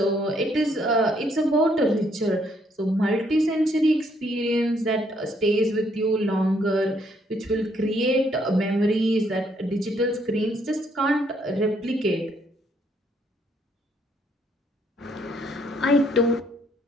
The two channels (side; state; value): both; normal; correlation 0.70